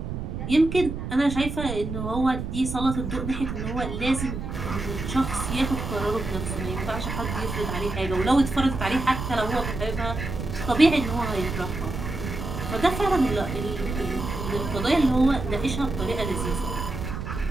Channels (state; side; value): noise; right; rumble, 5 dB below the sound